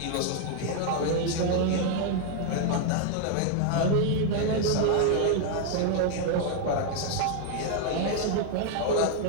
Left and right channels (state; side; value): different; both; correlation 0.00